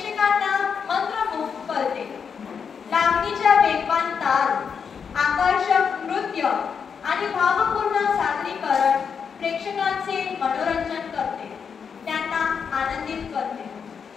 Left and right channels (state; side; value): quieter; right; 6.5 dB